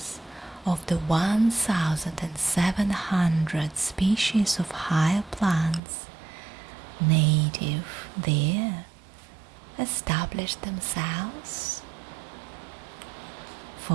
of the 1,700 species of higher plants native there established themselves.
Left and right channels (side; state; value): left; drops out; at 5.8 s